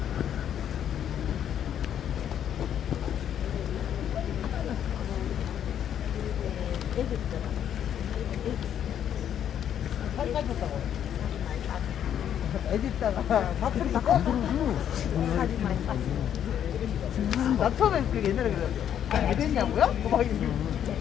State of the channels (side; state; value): right; quieter; 9.7 dB